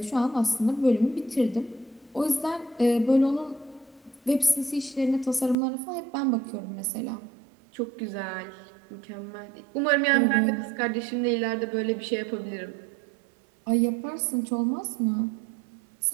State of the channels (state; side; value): drops out; left; at 5.6 s